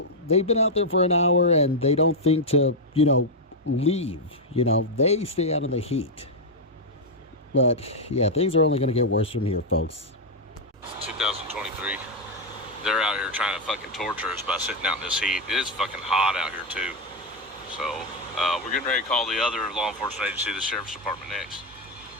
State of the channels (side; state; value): both; normal; correlation 0.00